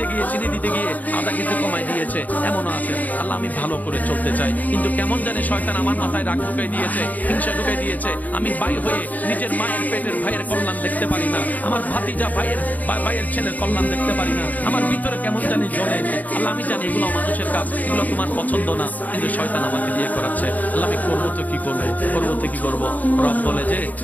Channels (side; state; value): right; late; 0.078 ms